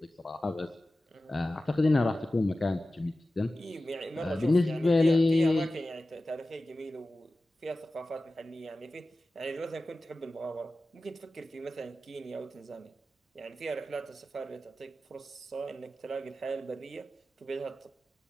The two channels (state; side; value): normal; both; correlation 0.95